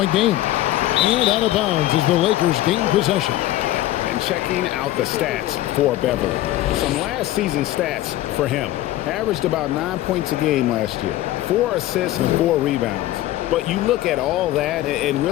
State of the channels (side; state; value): right; quieter; 15.1 dB